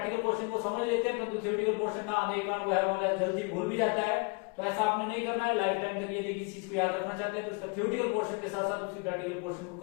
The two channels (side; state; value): right; quieter; 32.6 dB